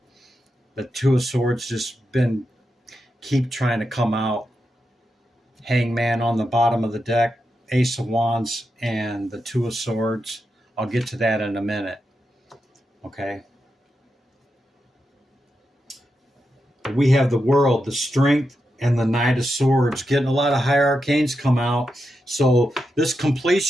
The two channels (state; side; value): normal; both; correlation 0.87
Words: The Two of Swords just keep trying to come out. Hangman on the bottom of the deck, Ace of Wands, and the Two of Swords I'll get to that in a minute. Okay. We have the World, the Strength, and the Knight of Swords. Getting a lot of high arcanes come out. So this